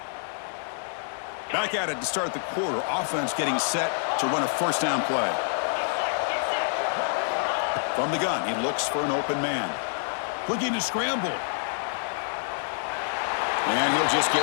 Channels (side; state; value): right; silent; digital silence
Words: Back at it to start the quarter. Offense getting set to run a 1st down play. From the gun, he looks for an open man. Looking to scramble. And he'll just get